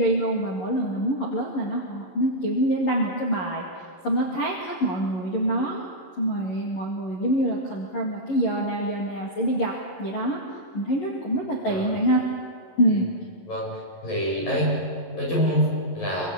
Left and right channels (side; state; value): right; late; 11 ms